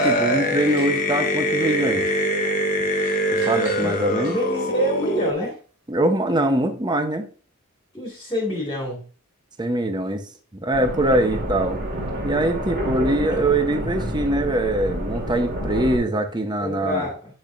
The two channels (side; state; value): both; normal; correlation 0.42